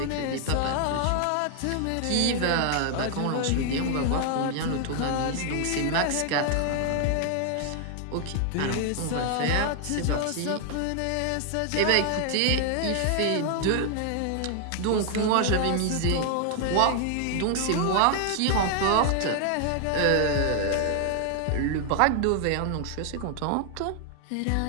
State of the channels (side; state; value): both; different; correlation 0.00